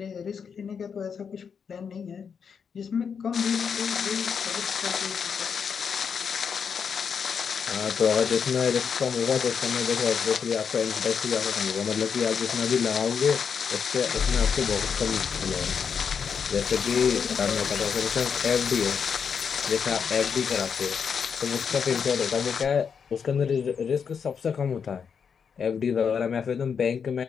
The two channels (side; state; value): right; quieter; 6.6 dB